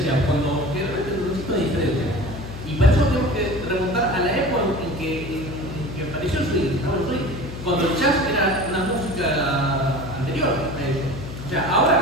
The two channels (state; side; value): noise; left; hum, 10 dB below the sound